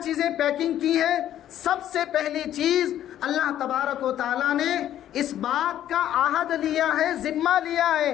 چیزیں پیکنگ کی ہیں۔ سب سے پہلی چیز اللہ تبارک و تعالیٰ نے اس بات کا عہد لیا ہے، ذمہ لیا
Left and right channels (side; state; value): right; quieter; 11.6 dB